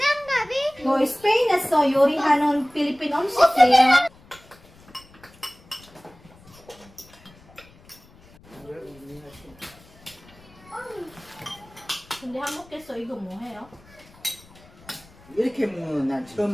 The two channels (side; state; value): left; noise; rumble, 26 dB below the sound